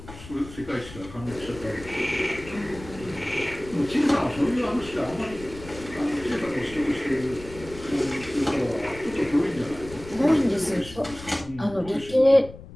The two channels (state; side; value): noise; left; rumble, 16 dB below the sound